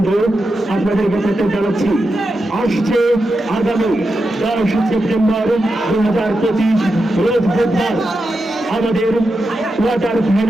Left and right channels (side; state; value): both; normal; correlation 0.88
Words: আপনাদেরকে প্রত্যেক জানাচ্ছি আসছে আগামী 10 সেপ্টেম্বর 2025 রোজ বুধবার আমাদের কোয়ার্টার